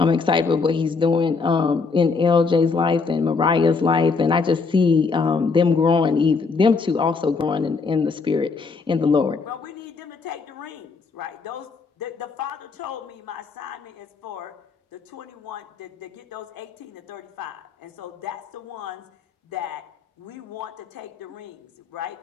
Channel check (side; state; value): right; quieter; 4.6 dB